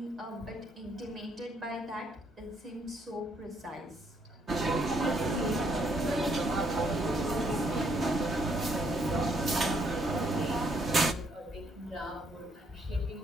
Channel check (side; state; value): both; normal; correlation 0.71